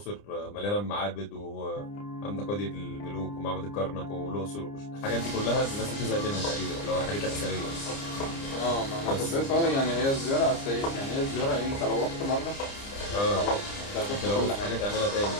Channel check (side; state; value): right; late; 30 ms